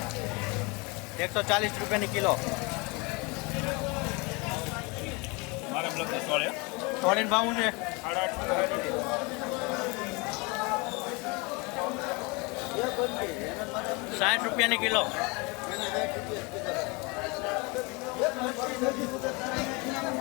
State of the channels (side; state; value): right; quieter; 28.1 dB